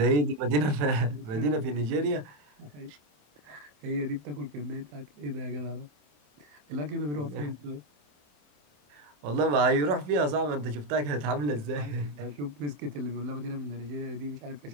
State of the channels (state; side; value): late; left; 27 ms